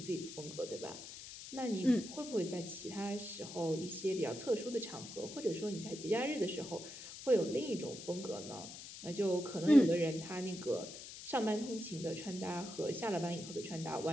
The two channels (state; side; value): noise; left; hiss, 12 dB below the sound